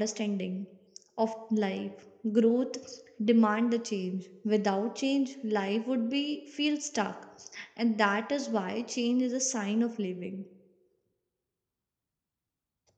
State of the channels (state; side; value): identical; both; correlation 1.00